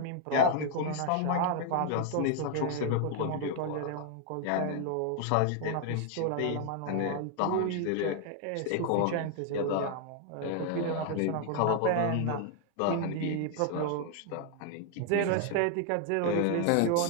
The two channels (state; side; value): different; both; correlation 0.00